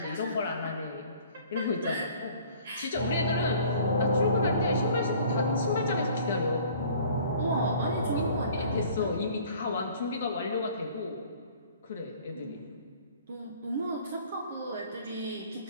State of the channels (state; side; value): inverted; both; correlation -0.51